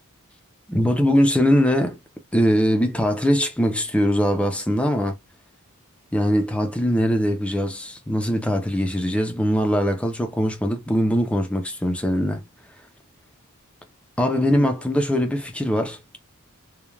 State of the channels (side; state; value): both; normal; correlation 0.87